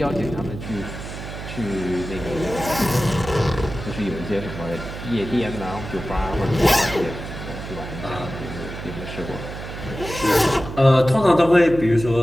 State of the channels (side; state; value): right; noise; hum, 9 dB below the sound